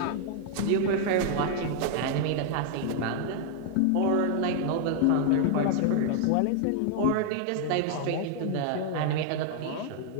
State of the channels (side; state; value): both; different; correlation 0.00